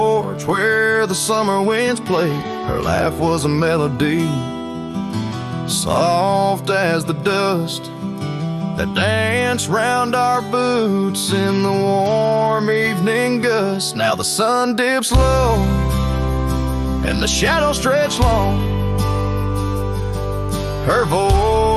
where the summer winds played. Her laugh was a melody, soft as the dust that danced round our boots in the warm evening gust. Now the sun dips low and the shadows stretch long. Her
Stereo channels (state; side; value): identical; both; correlation 1.00